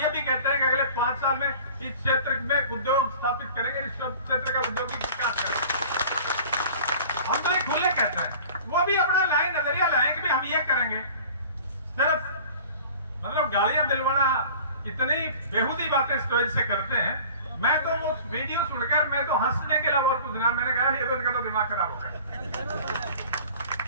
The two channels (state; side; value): inverted; both; correlation -0.44